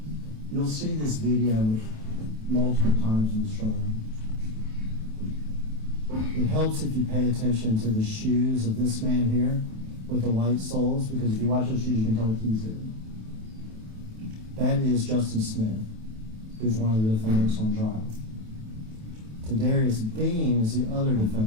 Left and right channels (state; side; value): late; left; 27 ms